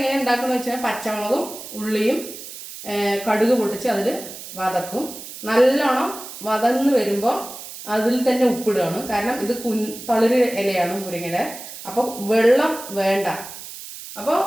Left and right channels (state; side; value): noise; right; hiss, 12 dB below the sound